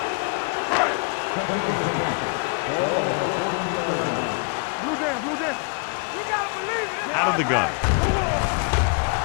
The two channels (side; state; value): right; quieter; 37.7 dB